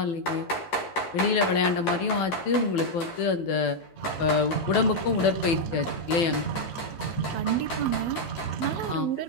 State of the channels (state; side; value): late; right; 12 ms